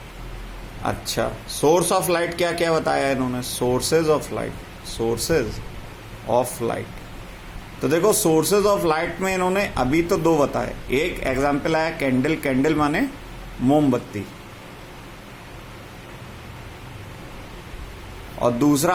अच्छा, सोर्स ऑफ लाइट क्या क्या बताया इन्होंने? Sources of light, sources of light. तो देखो सोर्सेज ऑफ लाइट में इन्होंने अभी तो दो बताए। एक एग्जाम्पल आया कैंडल, कैंडल माने मोमबत्ती, और दूसरा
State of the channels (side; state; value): both; identical; correlation 1.00